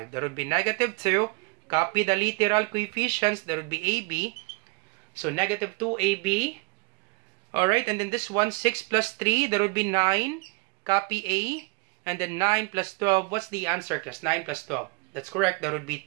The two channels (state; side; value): quieter; left; 29.3 dB